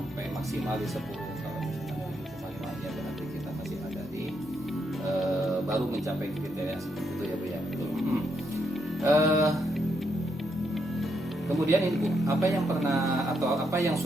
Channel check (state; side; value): normal; both; correlation 0.79